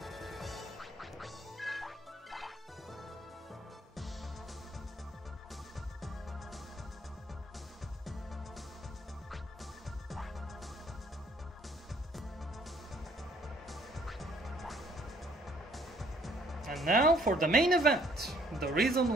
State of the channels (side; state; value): both; normal; correlation 0.63